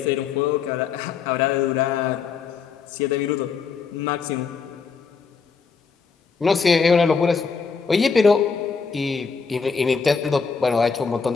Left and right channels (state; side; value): quieter; right; 5.4 dB